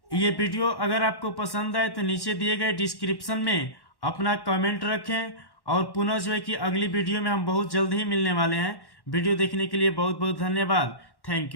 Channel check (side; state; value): right; late; 1.1 ms